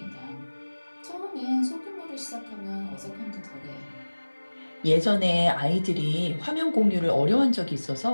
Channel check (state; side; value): inverted; both; correlation -1.00